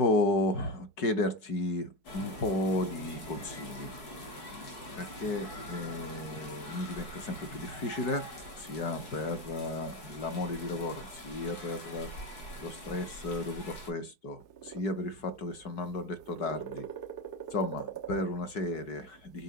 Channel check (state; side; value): late; right; 4.7 ms